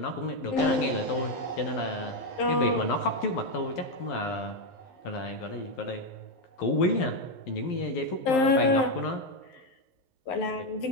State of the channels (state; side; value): late; right; 11 ms